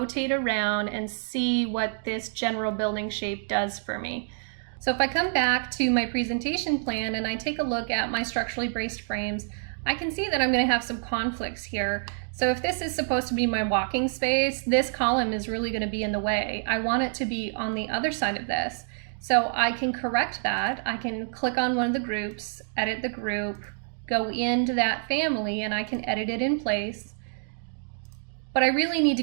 around and see what this general building shape does for me. So if I come back to my presentation plan and I take a look at my structurally braced frames, I can see that I'm going to have some conflicts here. So if this is supposed to be my walking space, this column is really going to be in the way. I want it to be on the other side of this. So I can correct that. I can click on one of the groups, edit the group, go into that family, and I can edit it in place. But I really need to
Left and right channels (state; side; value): silent; left; digital silence